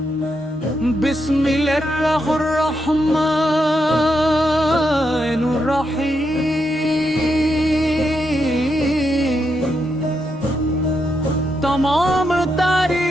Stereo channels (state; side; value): normal; both; correlation 0.82